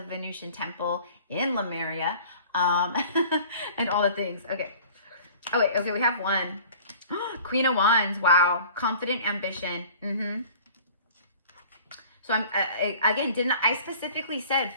Venusian Temple in Lemuria. And all the things. Okay. Oh, wait. Okay, we have one. Queen of Wands. Wow. Confident ambition. So I'm again, I specifically said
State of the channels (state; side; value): inverted; both; correlation -0.47